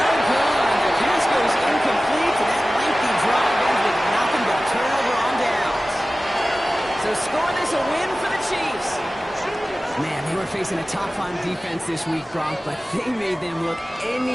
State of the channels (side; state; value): both; normal; correlation 0.96